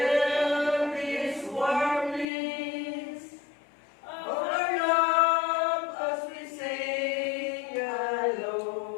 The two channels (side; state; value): right; drops out; at 2.2 s